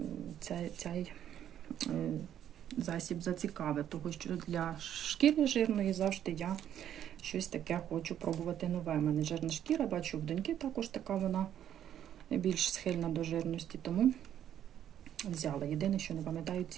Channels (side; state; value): left; quieter; 10.4 dB